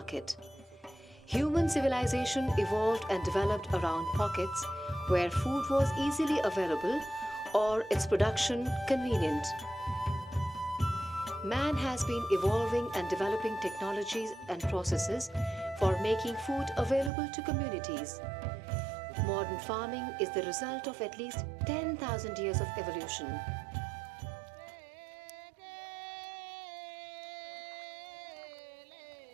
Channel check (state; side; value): drops out; left; at 17.1 s